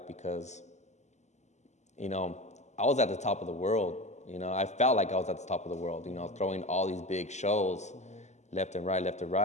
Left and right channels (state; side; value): late; right; 0.33 ms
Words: because, you know, I was at the top of the world. You know, I felt like I was at the top of the world, you know, throwing all these big shows left and